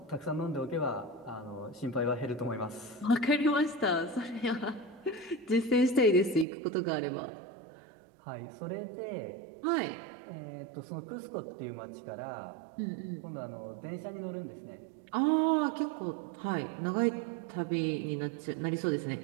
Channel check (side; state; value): left; drops out; at 6.5 s